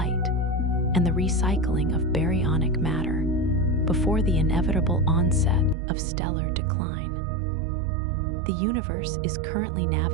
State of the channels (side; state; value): left; drops out; at 5.8 s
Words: and the recycling of baryonic matter before the inevitable onset of stellar decline. The universe is currently